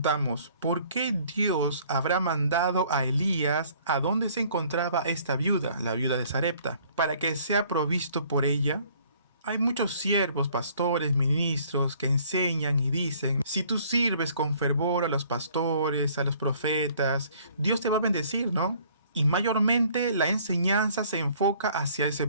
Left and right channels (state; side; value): inverted; both; correlation -0.58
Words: ¿por qué Dios habrá mandado a Elías a donde se encontraba esta viuda, la viuda de Sarepta, para que sea provisto por ella? Hay muchos siervos, pastores, ministros que enseñan y dicen: si tú sirves con fervor a los pastores, a los profetas, Dios te va a bendecir, ¿no? Y mayormente la enseñanza se enfoca hacia ese